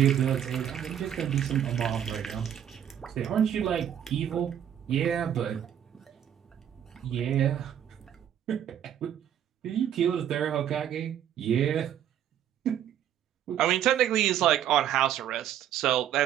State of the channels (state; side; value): quieter; left; 10.0 dB